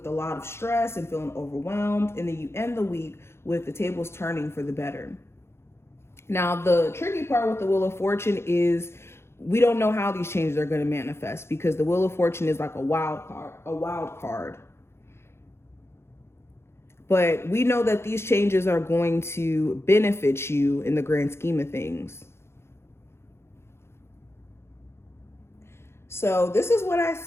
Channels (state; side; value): late; right; 0.12 ms